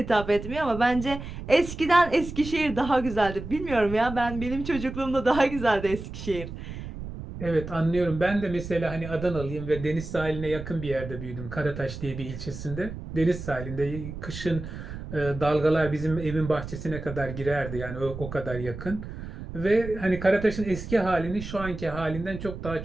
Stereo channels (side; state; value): right; noise; rumble, 9 dB below the sound